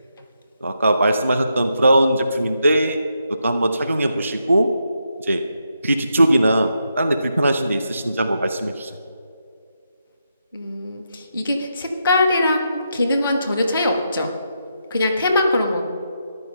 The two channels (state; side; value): inverted; both; correlation -0.82